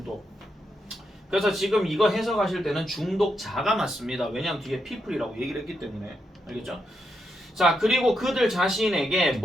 그래서 지금 이거 해석하실 때는 중독자가 맞습니다. 왜냐하면 뒤에 people이라고 얘기를 했기 때문에. 알겠죠? 자, 그리고 그들 자신에게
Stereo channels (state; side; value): normal; both; correlation 0.82